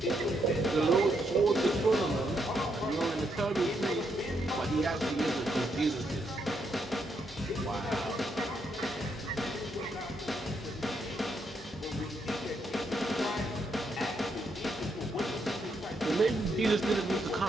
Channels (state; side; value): normal; both; correlation 0.77